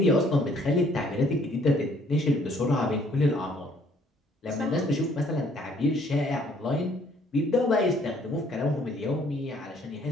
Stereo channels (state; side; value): normal; both; correlation 0.62